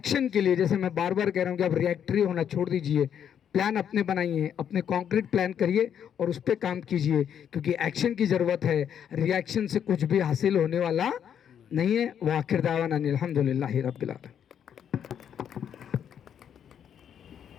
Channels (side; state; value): right; quieter; 8.8 dB